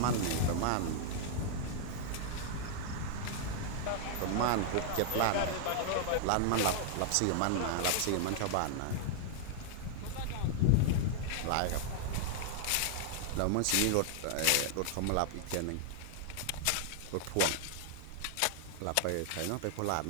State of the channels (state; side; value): different; both; correlation -0.01